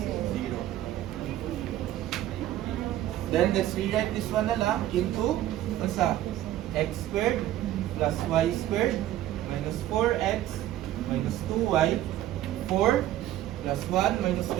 Then let's rewrite this one na lang into x squared plus y squared minus 4x minus 2y. 4 plus 1 minus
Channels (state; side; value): quieter; left; 13.4 dB